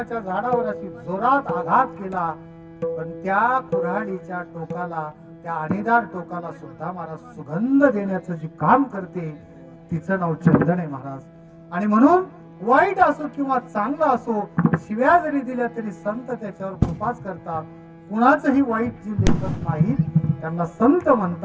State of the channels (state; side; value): identical; both; correlation 1.00